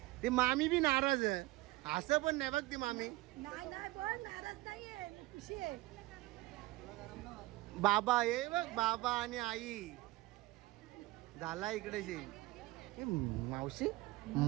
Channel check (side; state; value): left; quieter; 19.3 dB